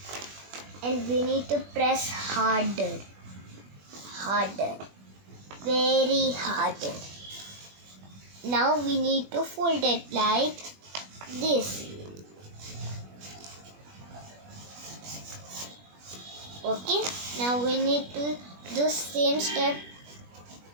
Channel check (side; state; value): left; late; 21 ms